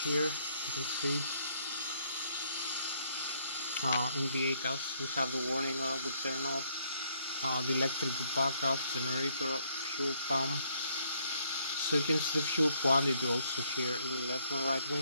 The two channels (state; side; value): inverted; both; correlation -0.69